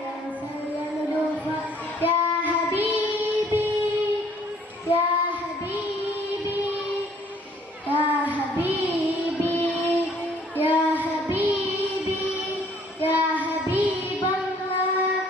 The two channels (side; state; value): both; normal; correlation 0.60